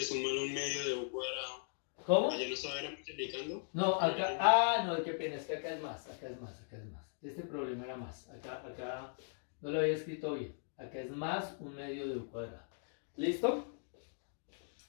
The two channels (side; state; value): right; silent; digital silence